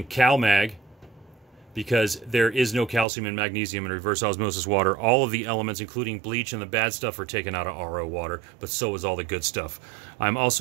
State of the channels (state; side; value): drops out; left; at 3.1 s